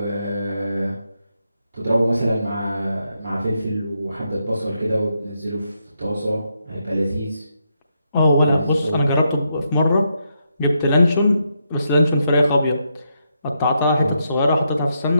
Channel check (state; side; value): inverted; both; correlation -0.81